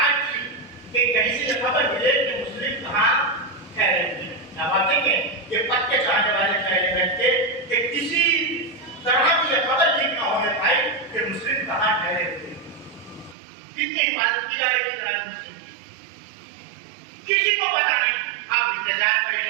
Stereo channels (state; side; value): drops out; left; at 13.4 s